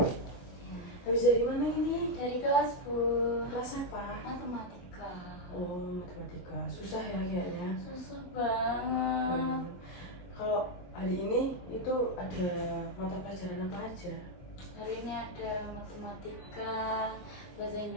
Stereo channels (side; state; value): right; late; 22 ms